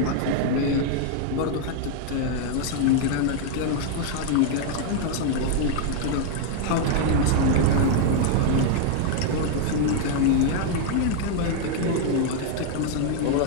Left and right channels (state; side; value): different; both; correlation 0.00